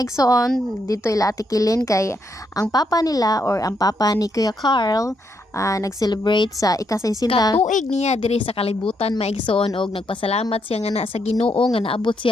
igsoon dito ila atikilin kay ang papa nila or ang papa ni Kuya Carl nag-celebrate sa ika-60 katuig niya diri sa kalibutan mga igsoon og nagpasalamat siya nga na sa Ginoo nga naabot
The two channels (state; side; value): normal; both; correlation 0.78